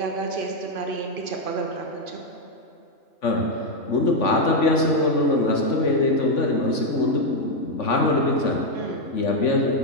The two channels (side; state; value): right; late; 3.5 ms